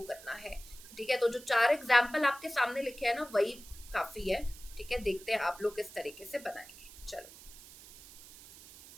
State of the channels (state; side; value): noise; right; hiss, 18 dB below the sound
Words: करना है, ठीक है। तो जो 4 एग्जाम्पल आपके सामने लिखे हैं ना वही काफी है, ठीक है। देखते हैं आप लोग किस तरीके से बनाएंगे। चलो